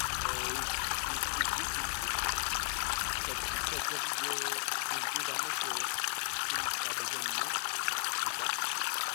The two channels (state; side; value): silent; right; 55 dB below the other